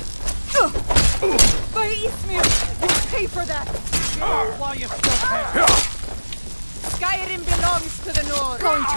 By Eastmere, you'll pay for that. While you still can. Skyrim belongs to the North. Going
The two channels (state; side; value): inverted; both; correlation -1.00